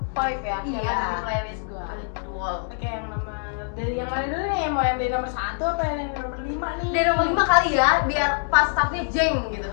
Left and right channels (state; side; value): silent; right; 62 dB below the other